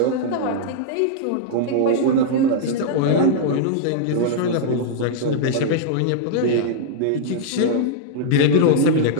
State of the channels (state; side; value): different; both; correlation -0.01